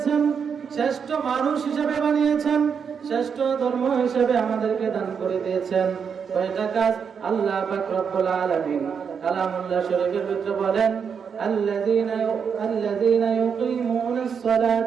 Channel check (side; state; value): left; quieter; 6.6 dB